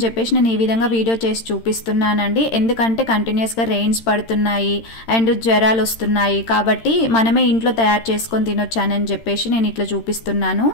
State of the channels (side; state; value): right; late; 13 ms